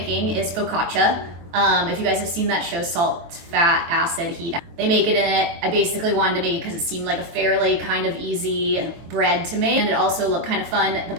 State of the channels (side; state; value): left; late; 23 ms